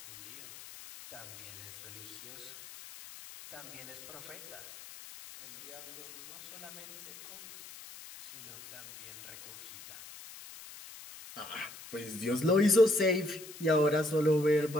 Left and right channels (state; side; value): noise; left; hiss, 16 dB below the sound